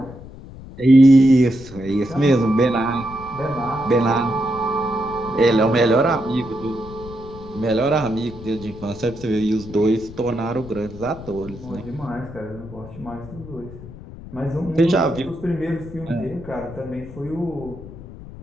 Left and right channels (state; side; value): noise; left; rumble, 15 dB below the sound